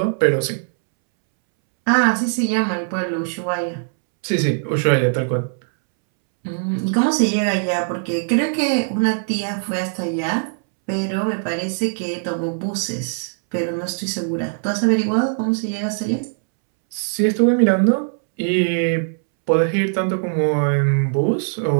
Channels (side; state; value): left; silent; 65 dB below the other